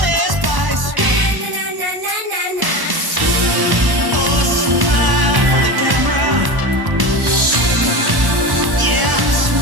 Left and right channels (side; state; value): left; late; 1.0 ms